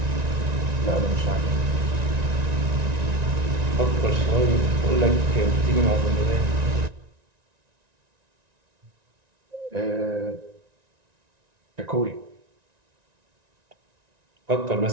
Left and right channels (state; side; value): late; left; 1.9 ms